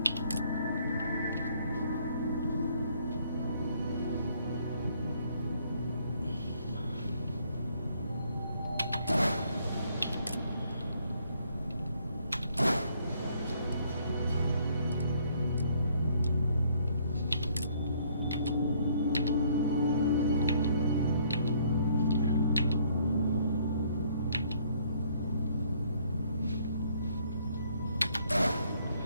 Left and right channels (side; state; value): both; inverted; correlation -0.65